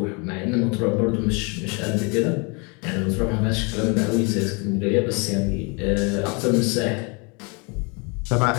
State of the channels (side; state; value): right; quieter; 31.9 dB